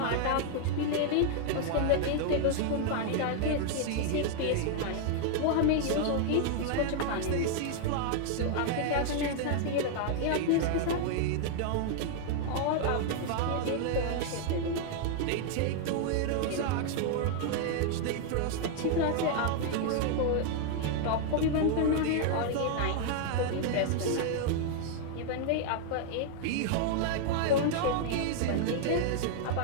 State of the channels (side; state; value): both; different; correlation 0.00